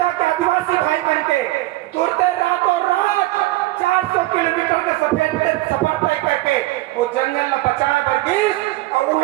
के आदिवासी भाई बन के तुरते रातों रात 400 किलोमीटर के सफर तय करके वो जंगल में बचाए वर्गीस और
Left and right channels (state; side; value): quieter; left; 18.4 dB